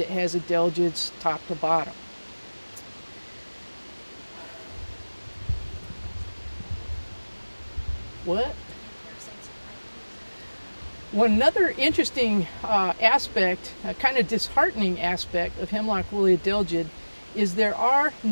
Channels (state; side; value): inverted; both; correlation -1.00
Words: has adelgids top to bottom. What? One another interesting aspect, a kind of disheartening aspect of hemlock woolly adelgid is there are